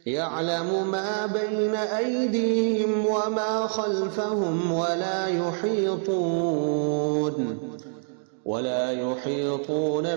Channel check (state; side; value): silent; left; 61 dB below the other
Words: يعلم ما بين أيديهم وما خلفهم ولا يحيطون